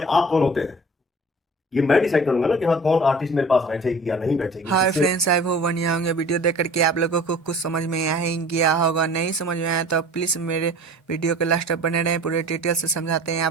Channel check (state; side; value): normal; both; correlation 0.44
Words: आप कौन होते हैं? ये मैं डिसाइड करूंगा ना कि हाँ कौन आर्टिस्ट मेरे पास बैठेगी या नहीं बैठेगी। हाय इससे फ्रेंड्स, आई होप बढ़िया होंगे। वीडियो देख करके आप लोगों को कुछ समझ में आ ही गया होगा। नहीं समझ में आया तो प्लीज़ मेरे वीडियो के लास्ट तक बने रहें, पूरे डिटेल से समझाते हैं।